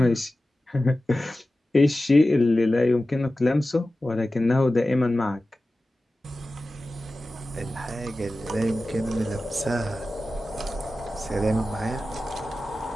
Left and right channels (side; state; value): both; normal; correlation 0.95